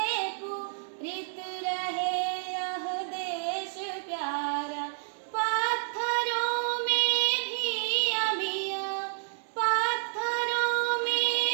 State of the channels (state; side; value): silent; left; digital silence